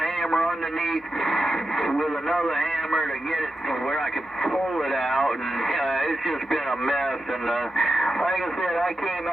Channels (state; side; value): normal; both; correlation 0.89